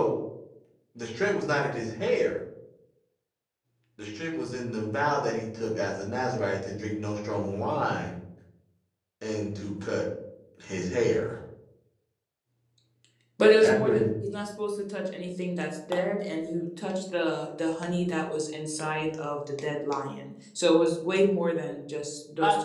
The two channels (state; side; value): identical; both; correlation 1.00